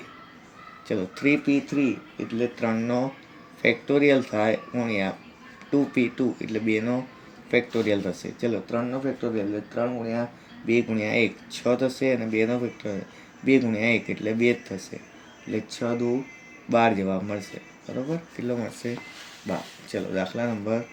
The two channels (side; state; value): both; identical; correlation 1.00